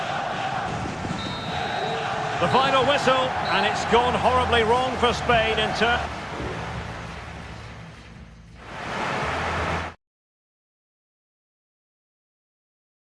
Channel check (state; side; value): identical; both; correlation 1.00